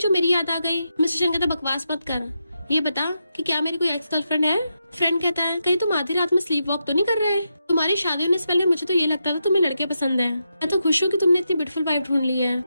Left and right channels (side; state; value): both; inverted; correlation -0.85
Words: मेरी याद आ गई? मिस्टर शन कहता बकवास मत कर, ये बता कि क्या मेरी कोई एक्स गर्लफ्रेंड है? फ्रेंड कहता है कहीं तुम आधी रात में स्लीप वॉक तो नहीं कर रहे? तुम्हारी शादी होने से पहले मुझे तो ये लगता था तुम्हें लड़के पसंद है। मैं तो खुश हूँ कि तुमने इतनी ब्यूटीफुल वाइफ ढूंढ ली है।